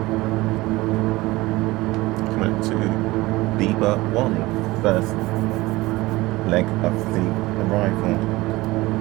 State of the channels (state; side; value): quieter; left; 20.1 dB